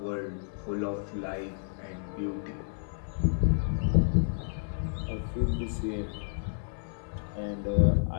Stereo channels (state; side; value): silent; right; 57 dB below the other